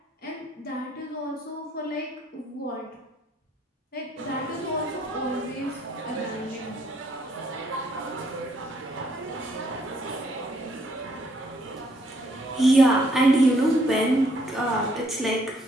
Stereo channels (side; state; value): both; normal; correlation 0.68